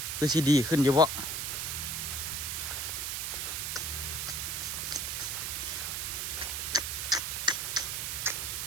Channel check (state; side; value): noise; right; hiss, 1 dB below the sound